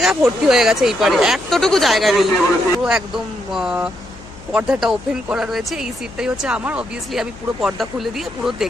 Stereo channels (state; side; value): noise; left; hum, 20 dB below the sound